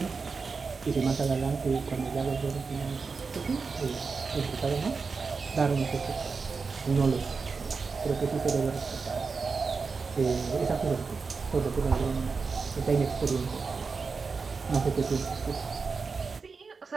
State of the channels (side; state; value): left; quieter; 4.8 dB